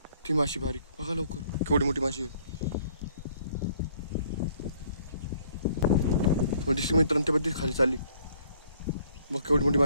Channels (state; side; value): inverted; both; correlation -0.61